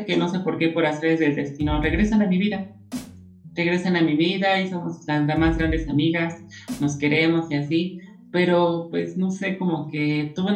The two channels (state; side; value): identical; both; correlation 1.00